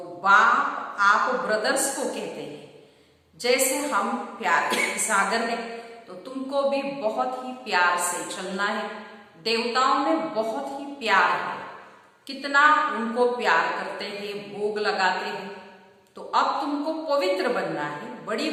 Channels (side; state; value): both; identical; correlation 1.00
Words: आप ब्रदर्स को कहते हैं। जैसे हम प्यार के सागर में, तो तुमको भी बहुत ही प्यार से चलना है। देवताओं में बहुत ही प्यार है, कितना उनको प्यार करते हैं, भोग लगाते हैं। तो अब तुमको पवित्र बनना है, बड़ी